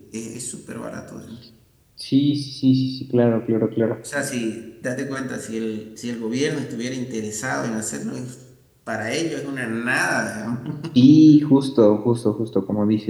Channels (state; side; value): identical; both; correlation 1.00